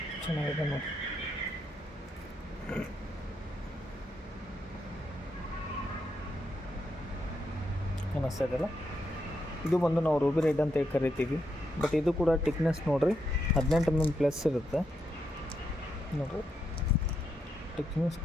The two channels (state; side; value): normal; both; correlation 0.81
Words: ಚೆನ್ನಾಗಿದೆ ನೋಡಿ. ಅನ್ನಿಸ್ತಾ ಇದೆಯಲ್ಲ, ಇದು ಬಂದು ನಾವು ರೂಬಿ ರೆಡ್ ಅಂತ ಕರಿತೀವಿ. ಬಟ್ ಇದು ಕೂಡ ಟಿಕ್ನೆಸ್ ನೋಡಿರಿ 18 mm ಪ್ಲಸ್ ಇರುತ್ತೆ ನೋಡಿರಿ. ಟಿಕ್ನೆಸ್